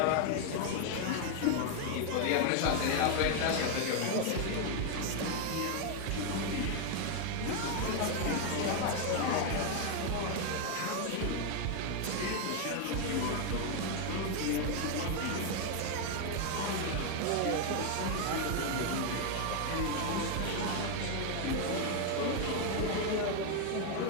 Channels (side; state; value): both; different; correlation 0.01